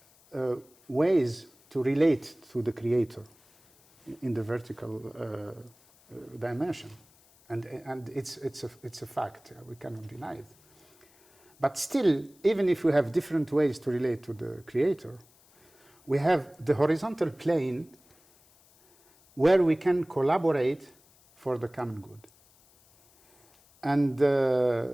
ways to relate to the Creator in the vertical dimension, and it's a fact. We cannot deny it. But still, even if we have different ways to relate to the Creator, we have the horizontal plane where we can collaborate for the common good. And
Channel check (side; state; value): left; noise; hiss, 30 dB below the sound